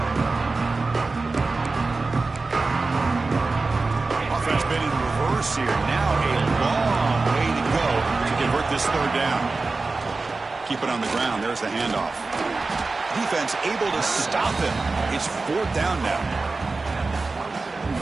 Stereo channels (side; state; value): left; quieter; 3.7 dB